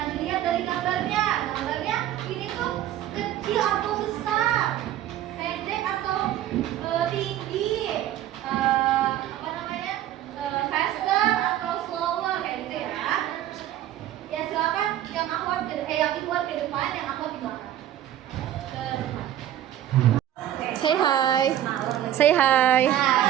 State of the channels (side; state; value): left; quieter; 12.1 dB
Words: dilihat dari gambarnya. Gambarnya ini tuh kecil atau besar, pendek atau tinggi, apa namanya, faster atau slower, kayak gitu ya. Ya silakan yang akhwat yang Ikhwan ke depan, yang akhwat di belakang. Ke depan. Say hi. Say hi.